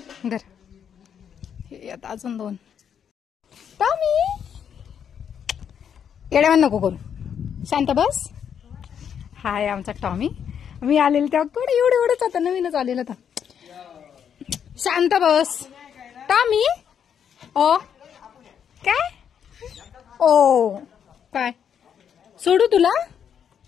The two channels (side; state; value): right; quieter; 8.1 dB